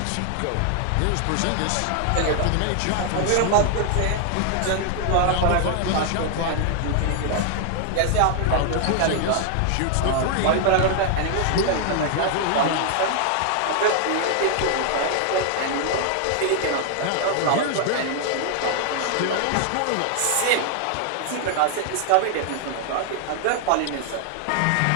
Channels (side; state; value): both; different; correlation 0.00